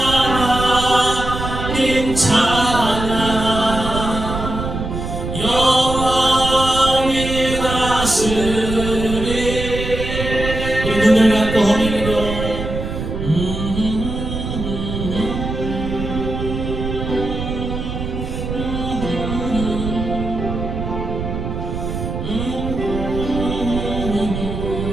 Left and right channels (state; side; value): noise; right; rumble, 5 dB below the sound